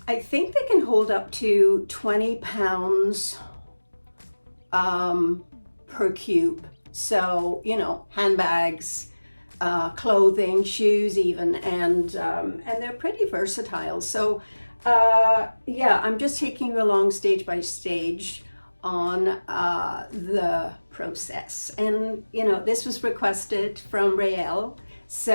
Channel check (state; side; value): inverted; both; correlation -1.00